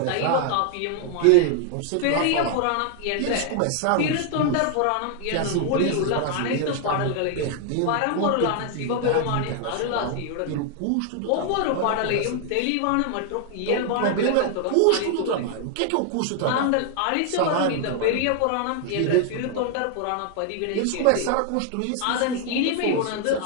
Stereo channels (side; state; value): both; different; correlation 0.00